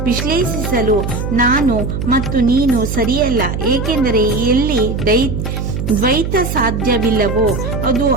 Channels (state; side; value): noise; right; hum, 3 dB below the sound